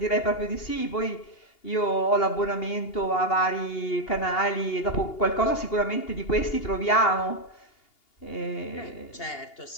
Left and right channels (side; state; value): right; late; 2.8 ms